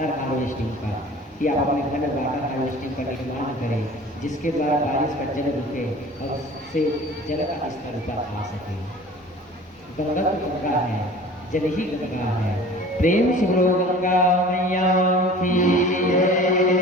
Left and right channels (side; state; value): both; normal; correlation 0.43